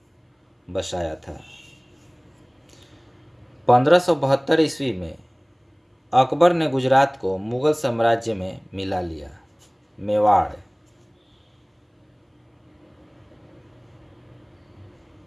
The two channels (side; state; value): both; identical; correlation 1.00